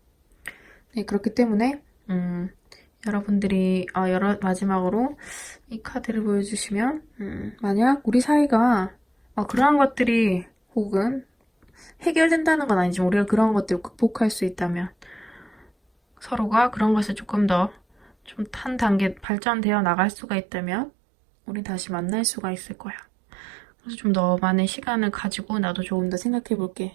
네, 그렇기 때문에 여러분들이 마지막으로 이 카드를 보여주시면 만약 우리 사이가 그러한 것들이 혹은 해결된다는 건 아니지만 우리가 그런 것들을 극복할 수 있다면 서로가 그런 것을 조금 더 좀 한 단계 발전되어 나갈 수가 있다면 우리 다시 만날 수가 있을 거야. 그래서 좀 너만의 시간을 가지고 나도 조금 더 생각해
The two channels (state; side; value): drops out; left; at 19.2 s